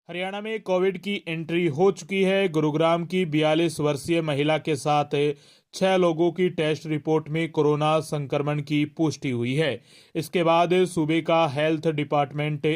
हरियाणा में कोविड की एंट्री हो चुकी है। गुरुग्राम की 42 वर्षीय महिला के साथ 6 लोगों की टेस्ट रिपोर्ट में कोरोना संक्रमण की पुष्टि हुई है। इसके बाद सूबे का हेल्थ डिपार्टमेंट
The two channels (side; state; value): both; identical; correlation 1.00